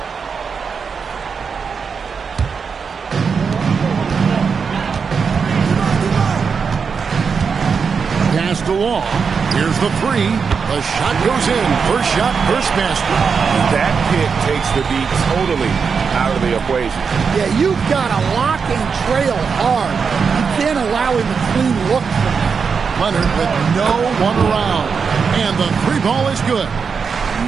Passed along. Here's the 3. The shot goes in. First shot, first basket. That pick takes the beat totally out of the equation. Yeah, you've got to lock and trail hard. You can't allow him a clean look from that. Leonard with no one around. And the 3 ball is good.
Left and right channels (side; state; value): left; quieter; 5.8 dB